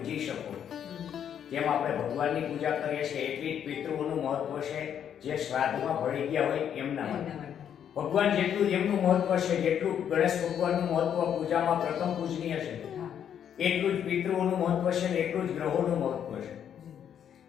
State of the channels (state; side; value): quieter; right; 9.0 dB